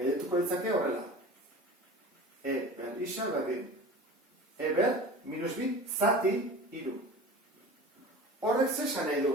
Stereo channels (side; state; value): both; normal; correlation 0.36